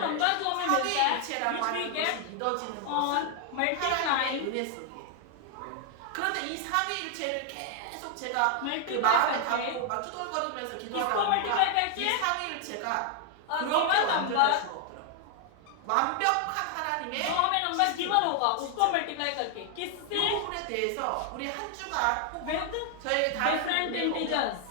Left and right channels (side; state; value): both; different; correlation 0.00